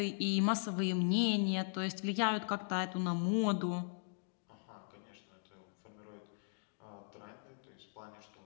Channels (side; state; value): right; silent; digital silence